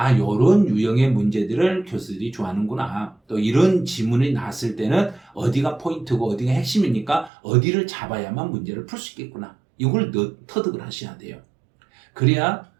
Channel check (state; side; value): drops out; left; at 7.3 s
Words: 요런 유형의 문제들을 교수들이 좋아하는구나. 또 이런 지문이 나왔을 때는 어디가 포인트고 어디가 핵심이니까 어디를 잡아야만 문제를 풀 수 있겠구나. 이걸 터득을 하셔야 돼요. 그래야